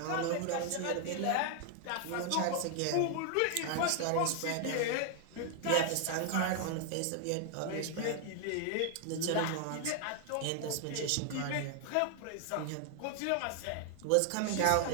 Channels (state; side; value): different; both; correlation 0.00